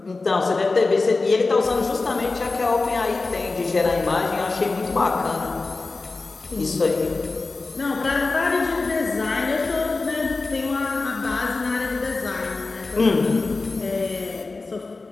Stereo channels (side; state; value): right; quieter; 3.7 dB